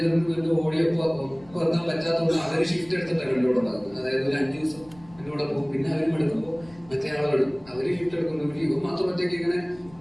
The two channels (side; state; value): left; noise; rumble, 24 dB below the sound